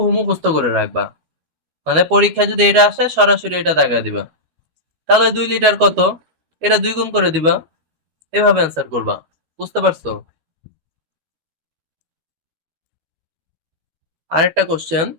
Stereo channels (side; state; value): left; late; 12 ms